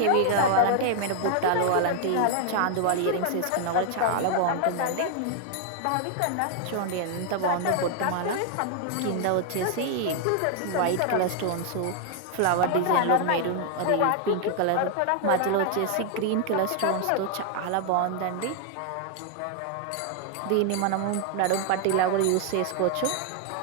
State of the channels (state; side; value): different; both; correlation 0.00